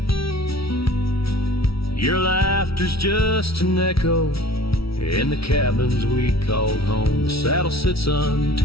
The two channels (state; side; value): late; right; 0.75 ms